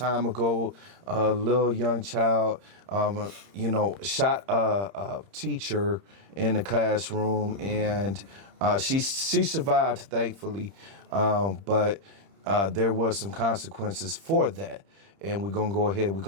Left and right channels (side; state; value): left; late; 30 ms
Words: ago, a little young child, shot a teacher in the classroom, and she survived, thankfully, but there was some consequences for that. And we're going to go ahead, we're